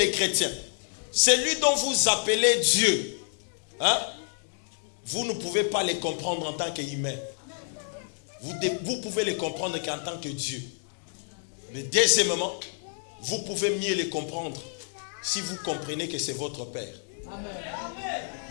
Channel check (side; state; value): right; silent; 59 dB below the other